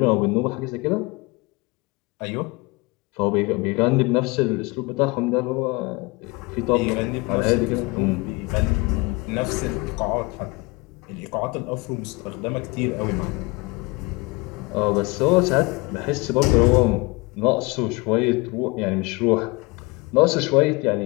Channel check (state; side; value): quieter; right; 25.5 dB